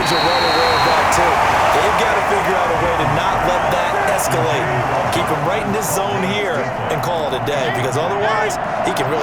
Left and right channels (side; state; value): both; identical; correlation 1.00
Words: are well aware of that, too. They've got to figure out a way to not let that escalate. Keep him right in this zone here and call it a day, because otherwise, he can